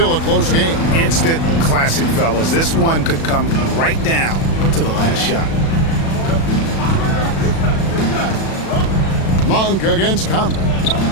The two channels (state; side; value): late; right; 36 ms